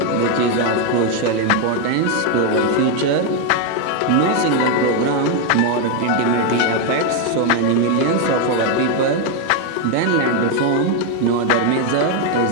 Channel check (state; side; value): different; both; correlation 0.01